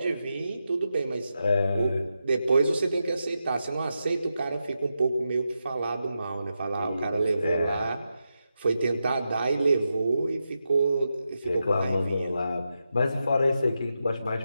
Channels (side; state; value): both; inverted; correlation -0.87